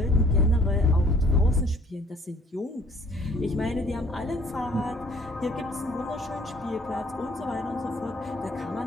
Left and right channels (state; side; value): normal; both; correlation 0.57